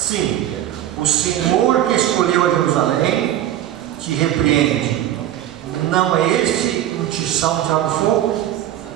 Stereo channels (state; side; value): quieter; left; 12.3 dB